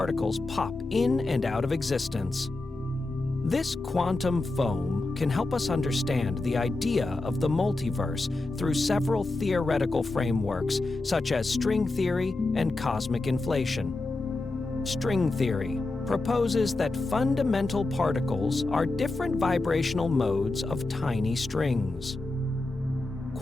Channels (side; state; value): right; quieter; 3.0 dB